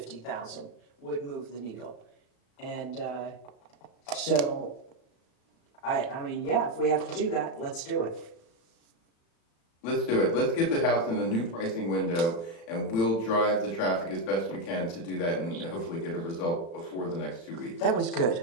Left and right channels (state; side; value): late; right; 36 ms